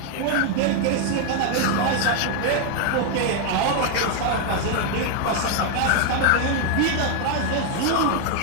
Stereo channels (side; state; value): both; different; correlation 0.00